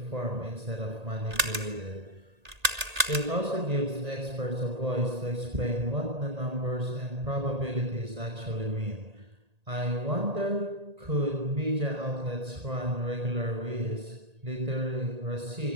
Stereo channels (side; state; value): left; late; 1.8 ms